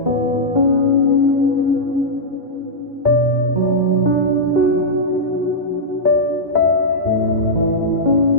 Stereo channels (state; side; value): late; right; 1.7 ms